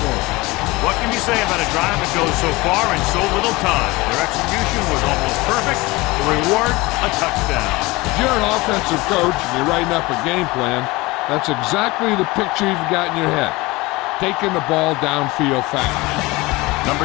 them. What can you say about a drive that goes so far in so little time? Their execution was almost perfect. The reward, a touchdown. If you're an offensive coach and you're writing up a game plan, that's exactly the picture you've got in your head. Taking the ball downfield fast. Number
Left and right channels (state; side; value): quieter; right; 22.2 dB